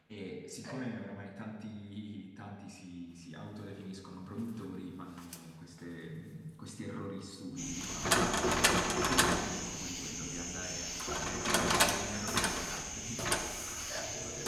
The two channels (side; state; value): both; identical; correlation 1.00